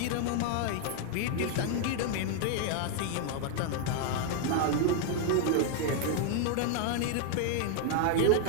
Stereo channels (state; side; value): different; both; correlation 0.00